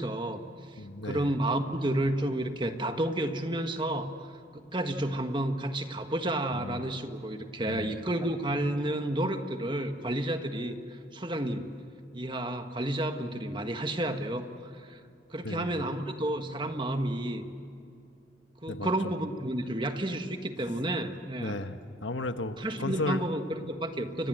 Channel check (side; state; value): both; normal; correlation 0.62